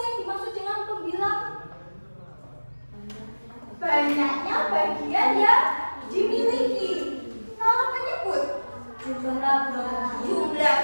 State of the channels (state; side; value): inverted; both; correlation -1.00